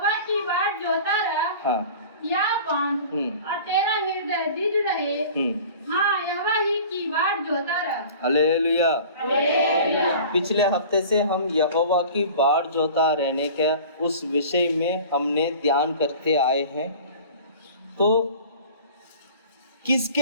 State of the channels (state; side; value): inverted; both; correlation -0.42